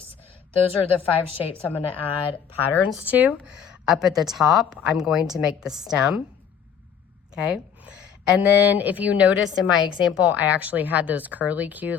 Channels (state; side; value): quieter; right; 7.8 dB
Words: Those are the 5 shapes I'm going to add patterns to. Up at the top, I'm going to make the stem, okay? And then if you noticed in my example, I actually had those curlicues,